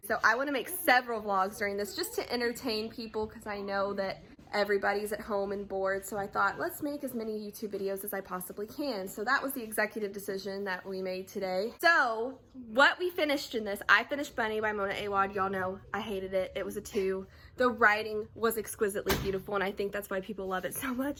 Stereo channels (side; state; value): both; identical; correlation 1.00